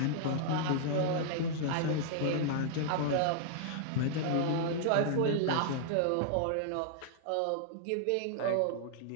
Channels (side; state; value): both; different; correlation -0.01